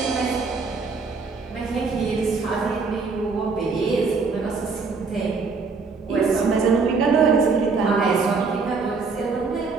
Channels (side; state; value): left; quieter; 4.5 dB